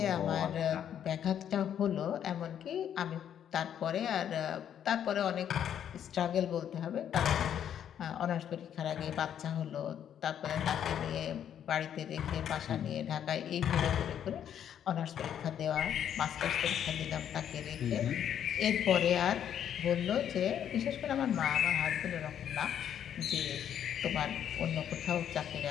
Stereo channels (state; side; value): quieter; right; 9.5 dB